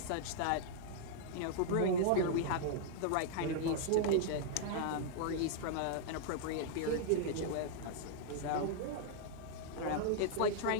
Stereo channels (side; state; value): both; different; correlation -0.01